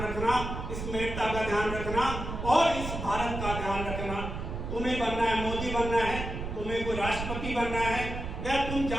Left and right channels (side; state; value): right; noise; rumble, 6 dB below the sound